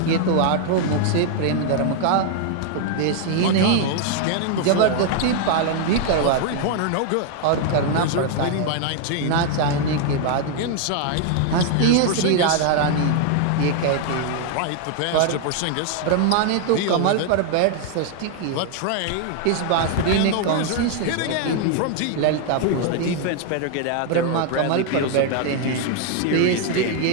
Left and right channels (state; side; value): different; both; correlation 0.00